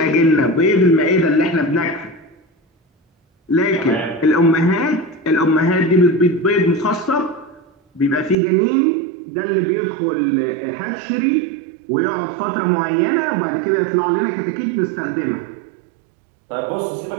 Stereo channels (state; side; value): drops out; left; at 8.3 s